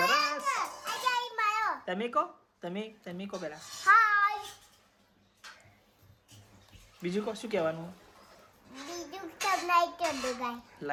તમે કહો પેલા. બીજું કહો, શું કહેવાનું?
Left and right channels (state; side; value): identical; both; correlation 1.00